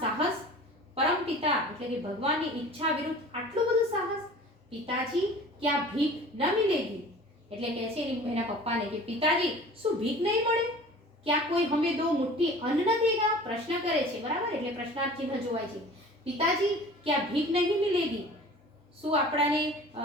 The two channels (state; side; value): normal; both; correlation 0.43